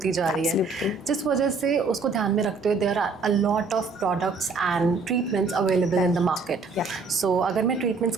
जा रही है, जिस वजह से उसको ध्यान में रखते हुए there are a lot of products and treatments available in the market. So अगर मैं ट्रीटमेंट्स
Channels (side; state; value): left; quieter; 4.1 dB